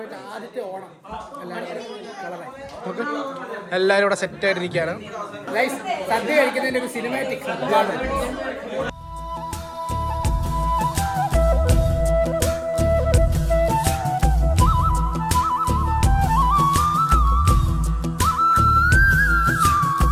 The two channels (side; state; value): both; identical; correlation 1.00